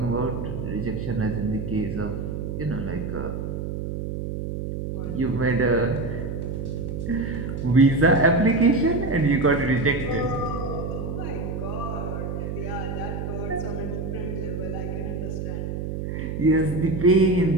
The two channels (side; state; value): right; noise; hum, 4 dB below the sound